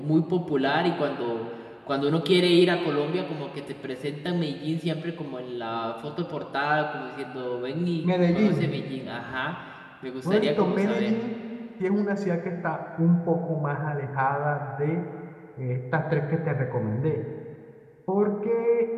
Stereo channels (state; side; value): identical; both; correlation 1.00